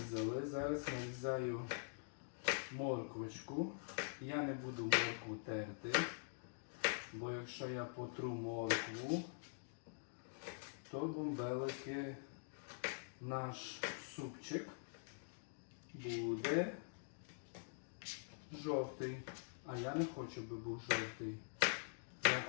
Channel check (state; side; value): silent; right; digital silence